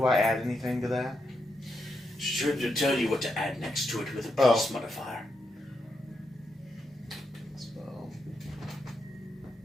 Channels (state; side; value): normal; both; correlation 0.83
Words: I add anything to that? Should tell you what to add next to it with a Oh. plus modifier. So.